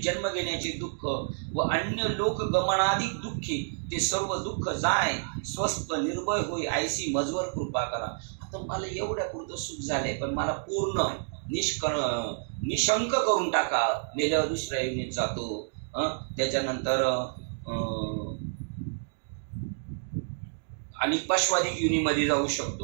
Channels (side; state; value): left; silent; digital silence